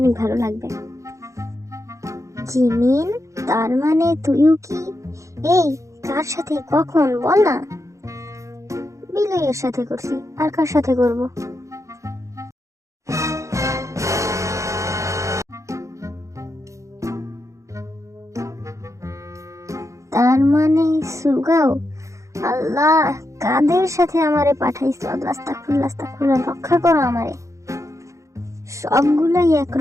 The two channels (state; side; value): late; left; 0.15 ms